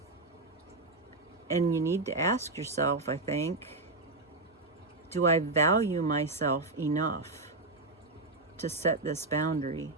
And you need to ask yourself, I think, do I value myself enough to set this boundary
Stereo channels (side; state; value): left; quieter; 3.3 dB